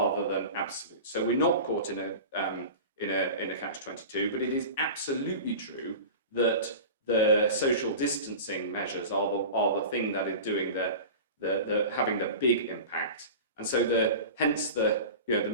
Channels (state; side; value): inverted; both; correlation -0.33